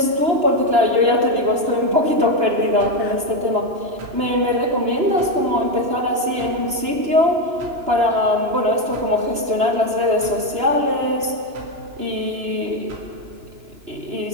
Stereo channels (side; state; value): left; late; 2.9 ms